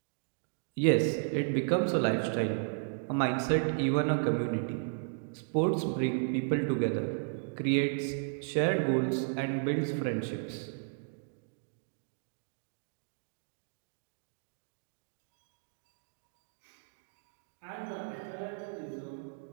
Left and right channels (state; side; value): silent; left; digital silence